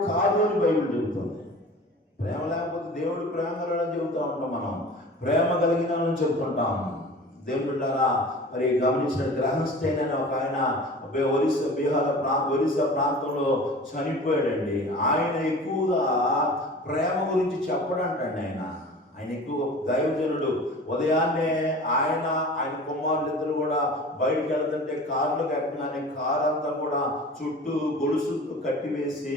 కాదు అని బైబిల్ చెబుతుంది. ప్రేమ లేకపోతే దేవుడు ప్రేమ కలగడం చెబుతూ ఉంటాం, మనం ప్రేమ కలిగిన చెబుతుంటాం. దేవుడు బిడ్డలారా, మరి గమనించిన గ్రహస్థైన ఒక ఆయన ఒరిస్సా ప్రాంతంలో చనిపోయాడండి. ఆయన ఎక్కువగా ప్రేమ గురించి చెప్పడంటండి. ఆయన ఎక్కువ దైవజనుడు. ఉదయాన్నే ఆయన కుమారులిద్దరు కూడా బయటికి వెళ్తుంటే కారులోకి ఎక్కగానే కారు అంతా కూడా చుట్టూ గొలుసులతో కట్టివేసి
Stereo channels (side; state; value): both; normal; correlation 0.40